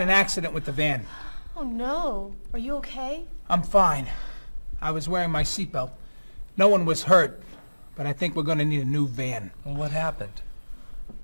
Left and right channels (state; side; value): inverted; both; correlation -1.00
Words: accident with the van. Oh no. Are you okay? I'm fine. I was wearing my seatbelt. No one was hurt, but I think we're going to need a new van. What happened?